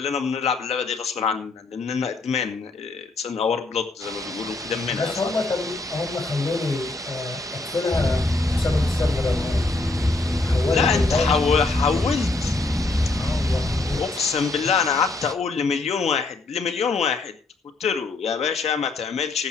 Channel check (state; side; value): quieter; right; 3.4 dB